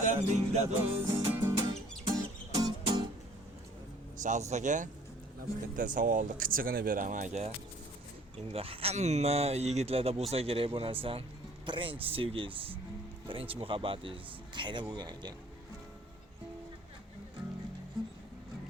do'st. Shahzod aka, bitta savolni qichig'ini beraman aka. Endi hamma yigitlarda bo'lsa kerak bu narsa. Birinchi sevgingiz, birinchi muhabbatingiz qayerda bo'lgan ekan?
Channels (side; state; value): both; normal; correlation 0.55